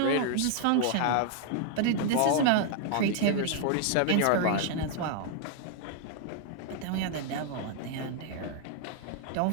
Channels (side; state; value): both; different; correlation 0.00